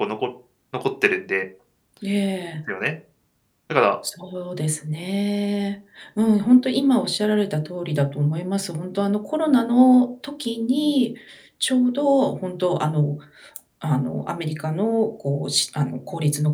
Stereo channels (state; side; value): identical; both; correlation 1.00